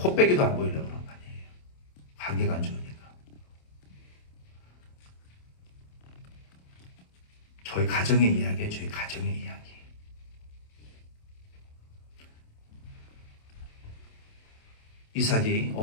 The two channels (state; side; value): late; right; 27 ms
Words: 안 보이려고 그런 거 아니에요. 관계가 안 좋으니까. 저희 가정의 이야기예요. 저희 가정의 이야기. 이삭이